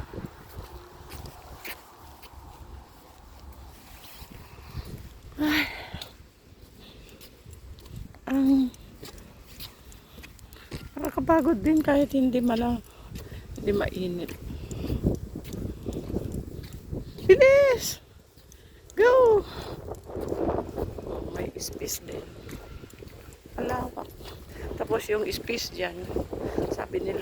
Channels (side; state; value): both; identical; correlation 1.00